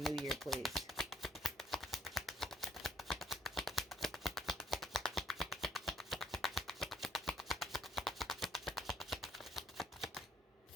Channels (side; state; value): both; normal; correlation 0.64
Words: new year, please?